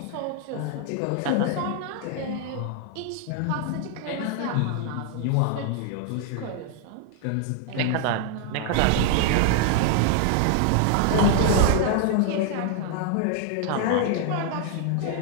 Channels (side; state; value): both; different; correlation 0.00